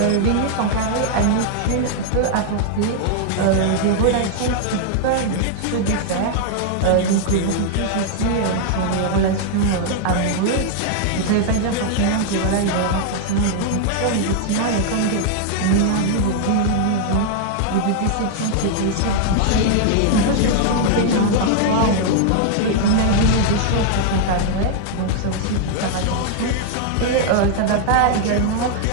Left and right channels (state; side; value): different; both; correlation 0.00